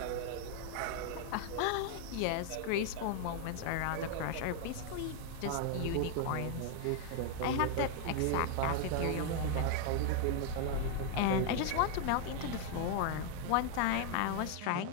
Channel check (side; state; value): both; different; correlation 0.00